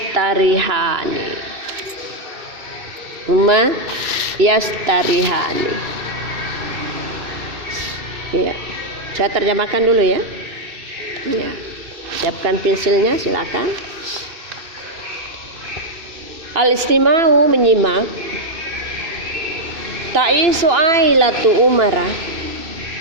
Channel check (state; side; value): late; left; 2.6 ms